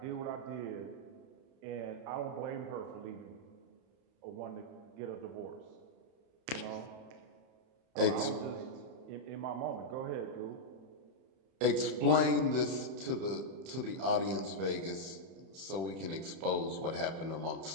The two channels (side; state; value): left; late; 31 ms